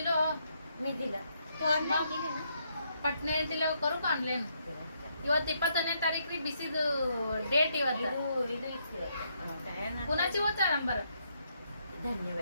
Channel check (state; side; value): inverted; both; correlation -0.75